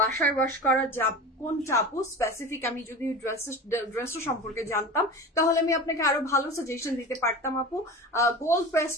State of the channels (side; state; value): both; normal; correlation 0.31